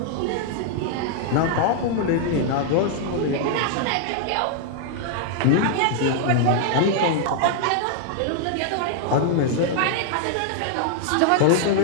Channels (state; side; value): different; both; correlation 0.00